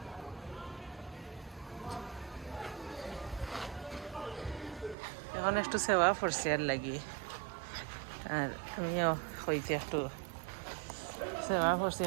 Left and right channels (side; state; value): left; drops out; at 5.0 s